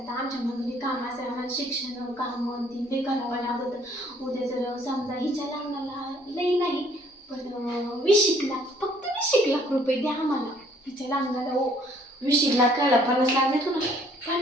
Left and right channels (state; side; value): normal; both; correlation 0.61